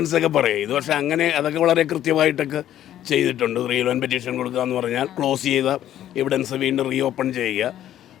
ഒക്കെ പറയും. ഇത് പക്ഷേ അങ്ങനെ അതൊക്കെ വളരെ കൃത്യമായിട്ടൊക്കെ ചെയ്തിട്ടുണ്ട്. 311 പെറ്റീഷൻ കൊടുക്കുക എന്ന് പറഞ്ഞാൽ ക്ലോസ് ചെയ്ത എവിഡൻസ് വീണ്ടും റീ ഓപ്പൺ ചെയ്യുക,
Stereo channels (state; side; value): quieter; right; 11.9 dB